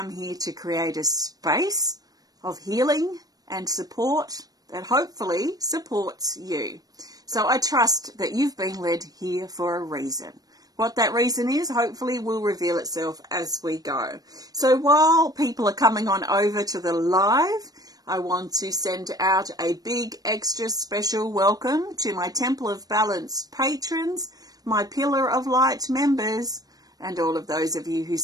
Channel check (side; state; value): left; late; 0.18 ms